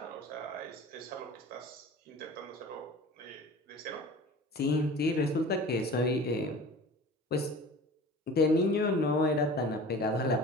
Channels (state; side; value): normal; both; correlation 0.40